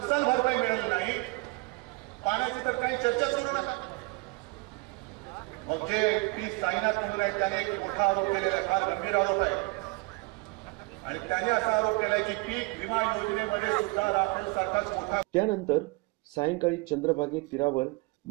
भरपाई मिळाली नाही, पाण्याची तर काही चर्चाच करू नका. मग जे पी साईनाथ म्हणून आहेत त्याने एक मोठा आरोप केलेला आहे, फार गंभीर आरोप आहे, आणि त्याने असा आरोप केलाय की पीक विमा योजनेमध्ये सुद्धा राफेल सारखाच मोठा. त्यानंतर सायंकाळी चंद्रभागे तीरावर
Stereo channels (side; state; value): left; quieter; 27.0 dB